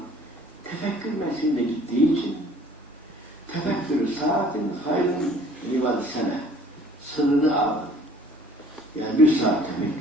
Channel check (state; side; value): normal; both; correlation 0.53